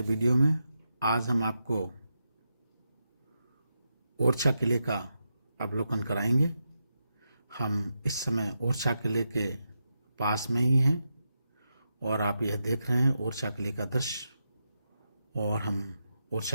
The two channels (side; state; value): both; inverted; correlation -0.86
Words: वीडियो में। आज हम आपको ओरछा किले का अवलोकन कराएंगे। हम इस समय ओरछा किले के पास में ही हैं और आप यह देख रहे हैं ओरछा किले का दृश्य। और हम